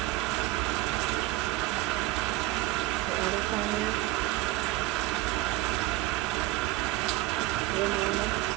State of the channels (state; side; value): quieter; left; 17.6 dB